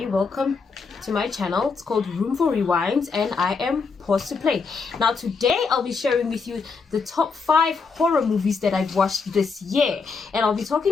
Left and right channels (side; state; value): right; quieter; 4.9 dB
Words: welcome to my channel. It's called Room for Rewinds and I am Pause to Play. Now today I'll be sharing with you the top 5 horror movies that I've watched this year, and I'll be